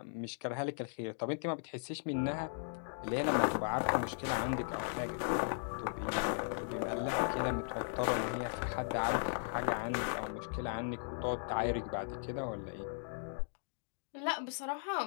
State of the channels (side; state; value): right; silent; digital silence